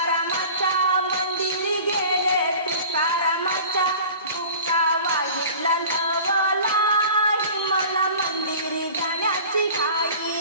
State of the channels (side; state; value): both; inverted; correlation -0.42